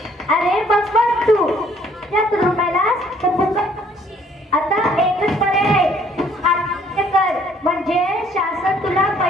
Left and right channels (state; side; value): normal; both; correlation 0.61